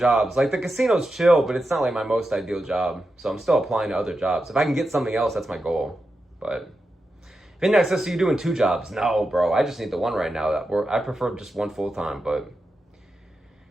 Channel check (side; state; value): both; normal; correlation 0.89